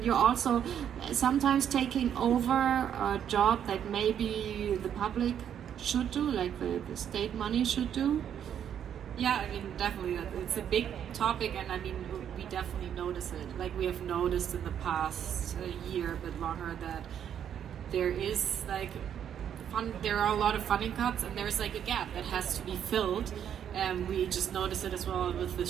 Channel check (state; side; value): quieter; left; 9.2 dB